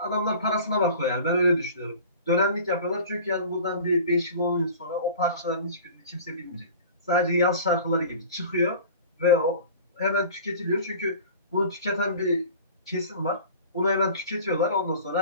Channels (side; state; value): both; inverted; correlation -0.42